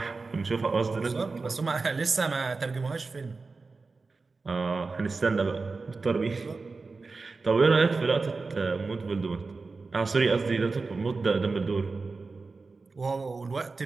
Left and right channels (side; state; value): left; quieter; 4.0 dB